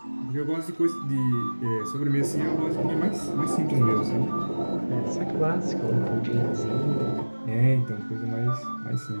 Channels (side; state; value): both; inverted; correlation -1.00